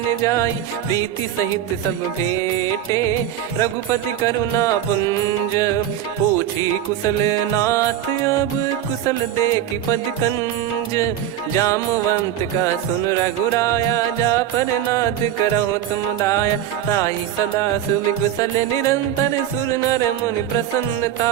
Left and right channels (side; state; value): left; quieter; 11.2 dB